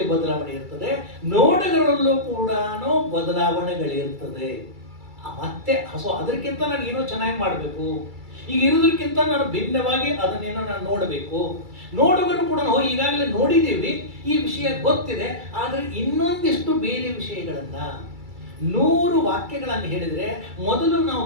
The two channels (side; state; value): left; late; 2.3 ms